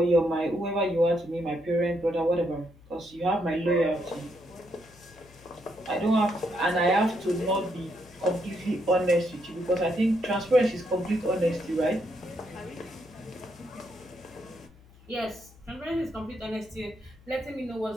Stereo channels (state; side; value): noise; left; hum, 25 dB below the sound